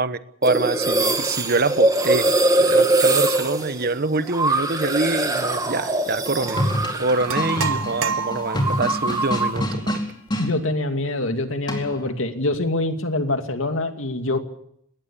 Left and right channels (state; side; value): normal; both; correlation 0.30